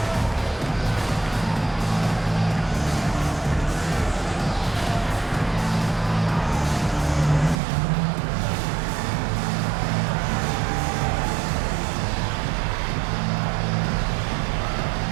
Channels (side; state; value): left; drops out; at 7.6 s